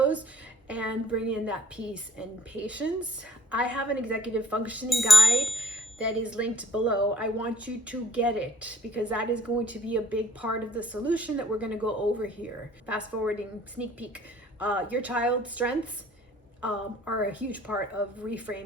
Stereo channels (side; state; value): both; normal; correlation 0.60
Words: and bring in that peace and patience. I have an executive functioning guide that is linked below. I want you to get it because that is going to be a big part of the solution that we're going to go over here. Fast forwarding, sneak peek. Your child's strengths are a huge part of